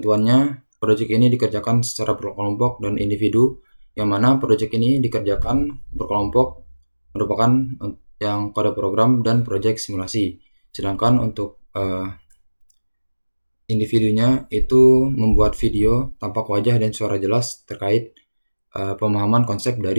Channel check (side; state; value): both; inverted; correlation -1.00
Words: proyek ini dikerjakan secara berkelompok dan individu, yang mana proyek ini dikerjakan berkelompok merupakan yang kode program dan proyek simulasi. Sedangkan untuk individunya itu membuat video tampak wajah dan suara jelas terkait pemahaman konsep